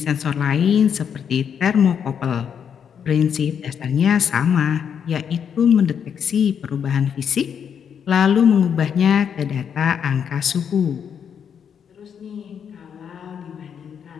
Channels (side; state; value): right; quieter; 7.7 dB